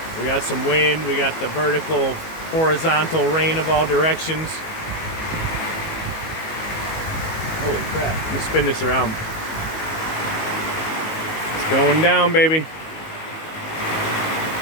we got some wind, we got the vertical, horizontal rain of all directions. Holy crap, let me spin this around. It's going down, baby.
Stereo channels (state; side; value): late; right; 19 ms